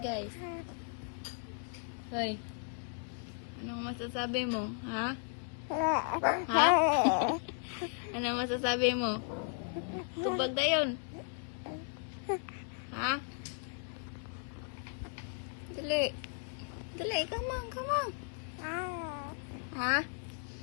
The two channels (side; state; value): right; silent; 54 dB below the other